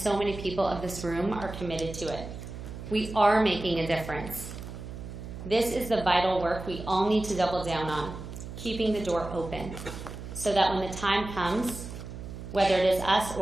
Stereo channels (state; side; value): noise; right; hum, 10 dB below the sound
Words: many people of this room are committed to it. We are making a difference. This is the vital work we all need to double down on, keeping the door open, so that when the time comes, whether it is us